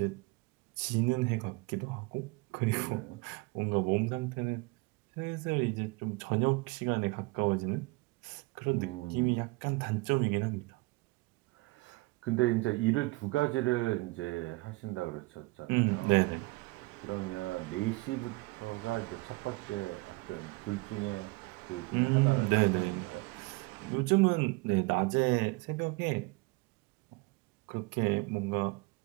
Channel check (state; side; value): quieter; left; 24.9 dB